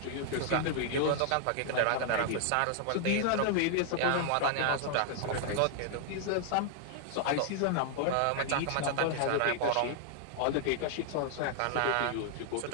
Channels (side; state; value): both; different; correlation -0.01